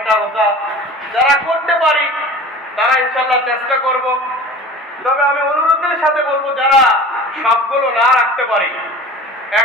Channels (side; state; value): both; normal; correlation 0.40